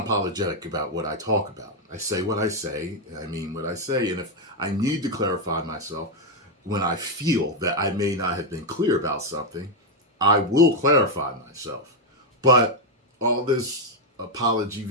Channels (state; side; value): normal; both; correlation 0.03